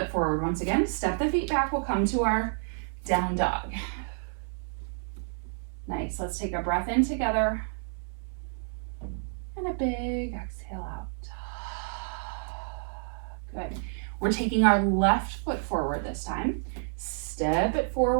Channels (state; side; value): silent; left; 58 dB below the other